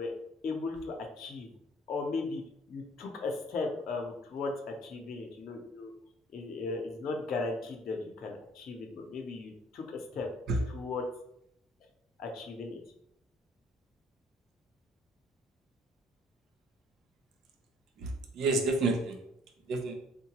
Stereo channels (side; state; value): both; normal; correlation 0.59